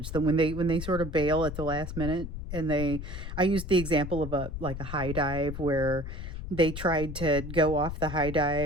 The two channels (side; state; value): left; noise; rumble, 7 dB below the sound